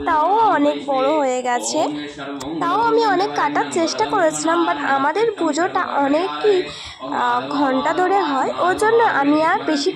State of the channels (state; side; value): identical; both; correlation 1.00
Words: তাও অনেক বড় হয়ে গেছে। তাও আমি অনেক কাটার চেষ্টা করেছিলাম, বাট আমাদের পুজোটা অনেকই ঘন্টা ধরে হয়, ওর জন্য আমি আর বেশি